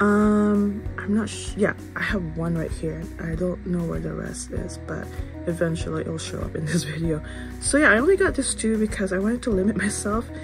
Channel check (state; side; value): identical; both; correlation 1.00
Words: not yeah, I have one right here. I don't know where the rest is, but eventually it'll show up in this video. So yeah, I only got this 2 because I wanted to limit myself,